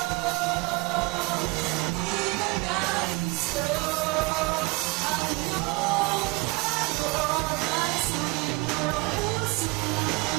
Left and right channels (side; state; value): left; quieter; 26.5 dB